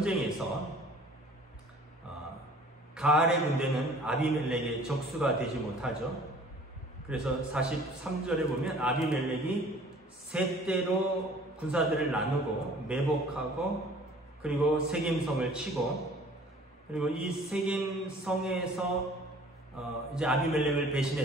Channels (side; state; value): both; normal; correlation 0.51